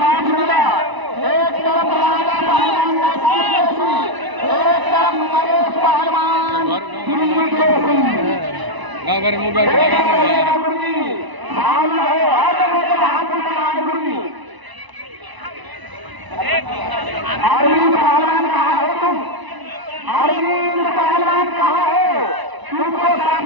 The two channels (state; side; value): late; left; 1.0 ms